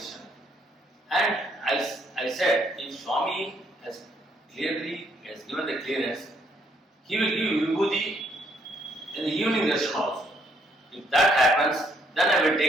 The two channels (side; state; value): both; normal; correlation 0.70